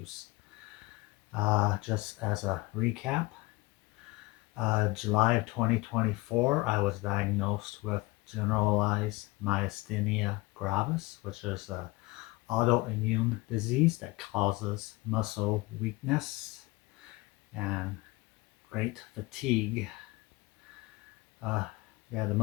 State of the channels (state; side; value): quieter; right; 22.6 dB